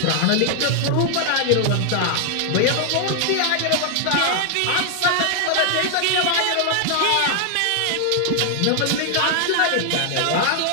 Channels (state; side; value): different; both; correlation 0.00